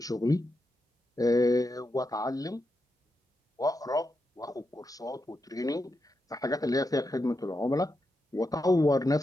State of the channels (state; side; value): normal; both; correlation 0.86